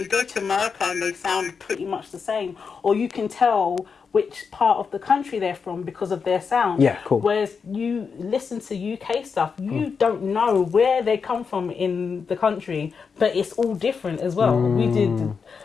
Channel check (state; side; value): quieter; right; 5.7 dB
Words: go to America and they sound pretty much the same, or you can tell which part of the country they're from because of their sound. Yeah, cool. Whereas you listen to UK stuff, you don't know where they come from in the country, but it's all different as well. We did